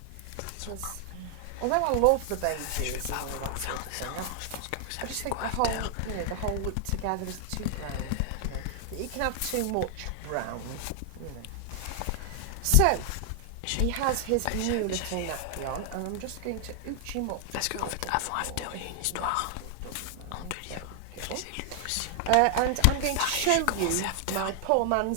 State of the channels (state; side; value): different; both; correlation 0.00